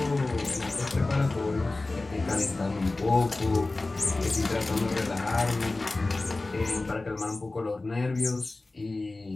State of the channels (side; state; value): right; quieter; 3.2 dB